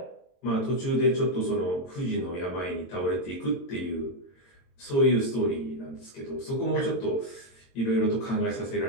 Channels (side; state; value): right; late; 22 ms